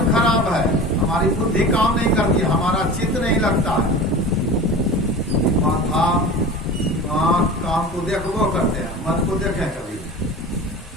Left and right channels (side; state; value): both; normal; correlation 0.34